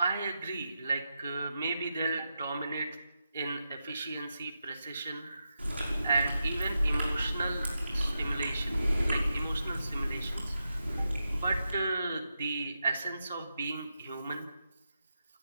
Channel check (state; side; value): inverted; both; correlation -0.88